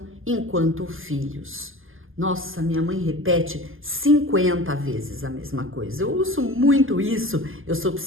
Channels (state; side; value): late; left; 0.59 ms